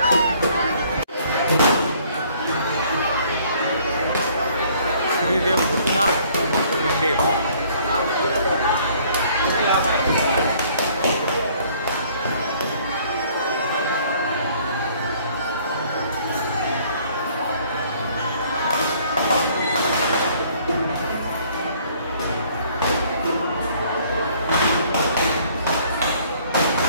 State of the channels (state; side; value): inverted; both; correlation -0.59